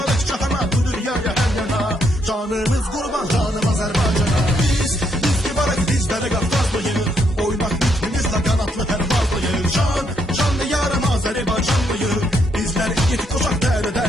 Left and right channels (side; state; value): both; normal; correlation 0.75